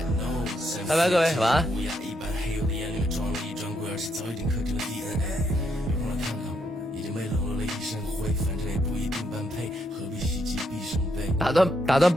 拜拜，各位，晚安。打断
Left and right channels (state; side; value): normal; both; correlation 0.77